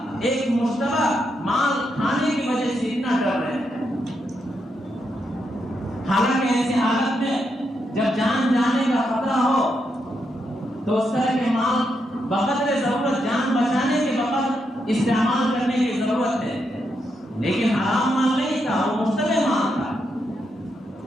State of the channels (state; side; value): normal; both; correlation 0.81